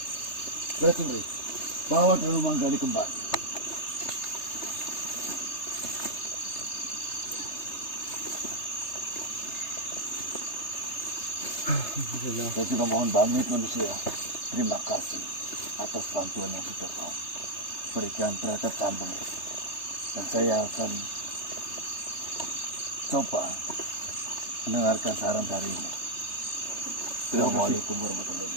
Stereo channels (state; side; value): late; right; 3.3 ms